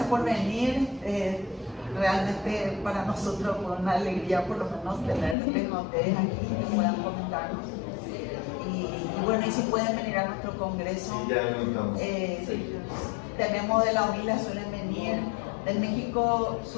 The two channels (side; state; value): right; drops out; at 5.4 s